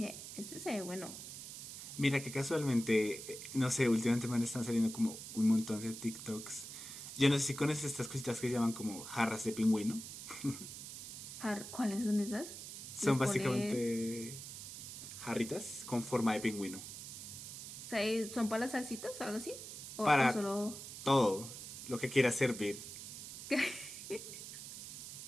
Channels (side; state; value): right; noise; hiss, 10 dB below the sound